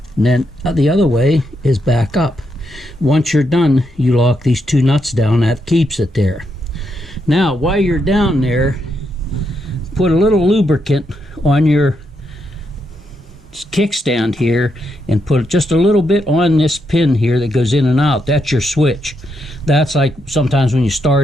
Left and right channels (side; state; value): both; normal; correlation 0.81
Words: And then the other way is back up. Once you're done, you lock these two nuts down. That keeps it there. Now, while you're down there, put a little lubricant on your kickstand here and put just a little bit on this pin here that goes in and out. That's your switch. That's like sometimes when you